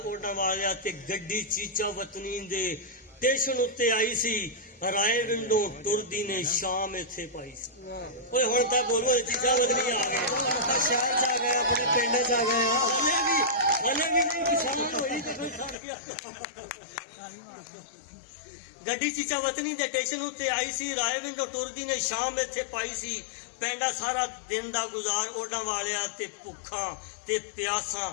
ਓਡਾਂ ਵਾਲਿਆ ਤੇ ਗੱਡੀ ਚੀਚਾ ਵਤਨੀ ਦੇ ਸਟੇਸ਼ਨ ਉੱਤੇ ਆਈ ਸੀ। ਰਾਏ ਵਿੰਡੋ ਟੁਰਦੀ ਨੇ ਸ਼ਾਮ ਇੱਥੇ ਪਾਈ ਸੀ। ਓਏ ਹੁਣ ਤਾਂ ਬੋਲੋ ਚੀਚਾ ਵਤਨੀ ਆ ਗਏ, ਸ਼ਹਿਰ ਚ ਆ ਗਏ, ਆਪਣੇ ਪਿੰਡ ਚ ਆ ਗਏ। ਹਲੇ ਵੀ ਨਹੀਂ ਕਿਸਾਨ ਹੋਈ ਤੇ ਕੋਈ ਸੜ ਗਿਆ। ਗੱਡੀ ਚੀਚਾ ਵਤਨੀ ਦੇ ਸਟੇਸ਼ਨ ਉੱਤੇ ਆਈ ਸੀ। ਰਾਏ ਵਿੰਡੋ ਟੁਰਦੀ ਨੇ ਸ਼ਾਮ ਇੱਥੇ ਪਾਈ ਸੀ। ਪੈਂਡਾ ਸਾਰਾ ਦਿਨ ਦਾ ਗੁਜ਼ਾਰ ਓਡਾਂ ਵਾਲਿਆ ਤੇ ਭੁੱਖਾਂ ਤੇ ਪਿਆਸਾਂ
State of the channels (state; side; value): drops out; right; at 15.8 s